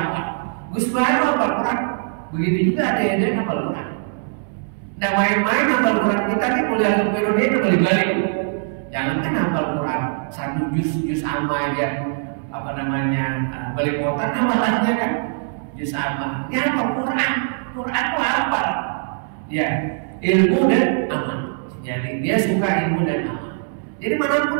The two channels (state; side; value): silent; left; digital silence